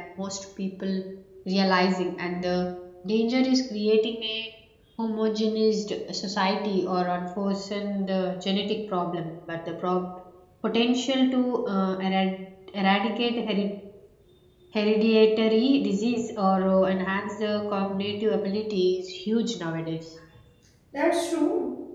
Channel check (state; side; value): identical; both; correlation 1.00